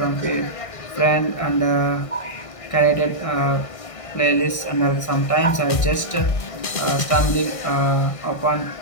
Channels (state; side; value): late; right; 1.6 ms